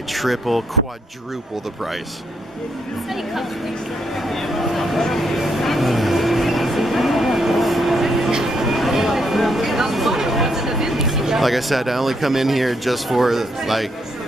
triple, quadruple the price. Like I said, I only come in here just for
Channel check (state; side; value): normal; both; correlation 0.76